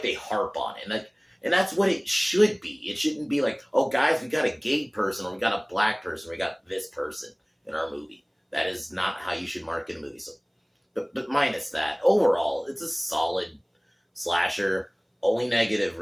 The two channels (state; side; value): identical; both; correlation 1.00